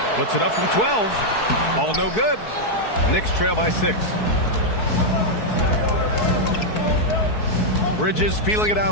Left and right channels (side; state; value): right; late; 4.6 ms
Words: Puts it up from 12. Ball no good. Knicks trail by 6. Bridges feeling it